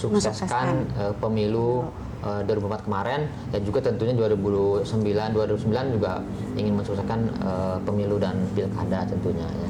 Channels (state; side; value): identical; both; correlation 1.00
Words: pemilu 2004 kemarin, dan juga tentunya 2009 juga ingin mensukseskan pemilu dan pilkada tentunya ya.